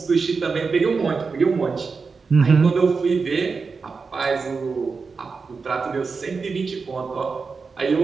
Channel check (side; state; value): left; quieter; 4.8 dB